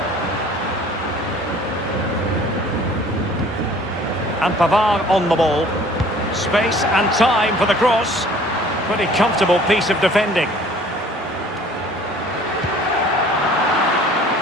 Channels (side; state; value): both; normal; correlation 0.51